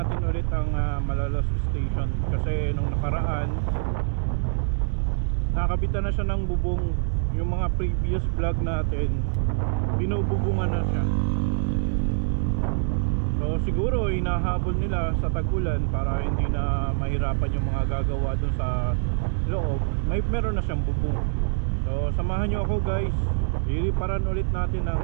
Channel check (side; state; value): left; silent; digital silence